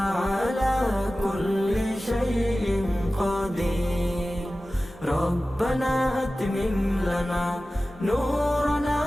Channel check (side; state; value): both; normal; correlation 0.96